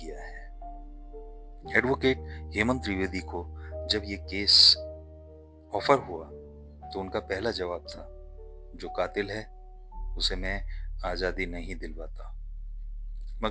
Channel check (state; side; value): identical; both; correlation 1.00